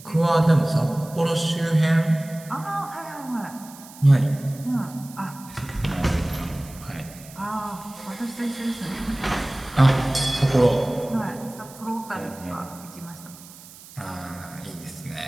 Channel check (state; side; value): noise; right; hiss, 19 dB below the sound